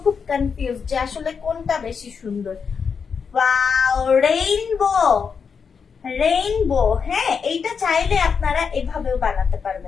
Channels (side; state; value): right; quieter; 6.0 dB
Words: খুব কনফিউজ যে আসলে কোনটা বেশি সুন্দর। Wow, rainbow, rainbow. হ্যাঁ, এইটা চাইলে আপনারা এভাবেও বানাতে